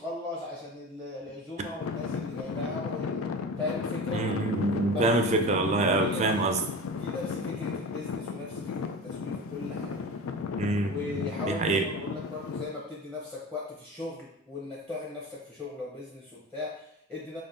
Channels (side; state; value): both; normal; correlation 0.31